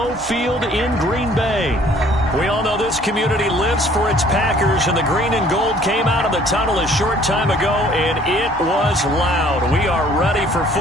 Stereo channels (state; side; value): normal; both; correlation 0.57